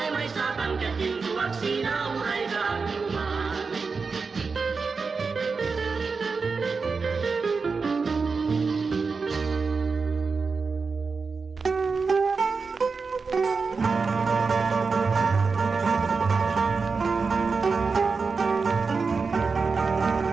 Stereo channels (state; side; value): quieter; left; 4.7 dB